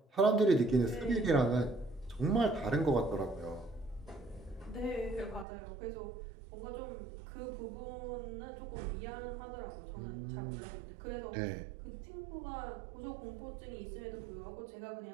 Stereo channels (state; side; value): drops out; left; at 5.5 s